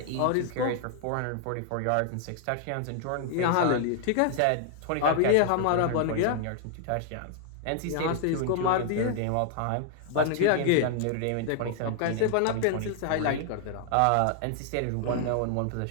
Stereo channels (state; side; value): different; both; correlation 0.00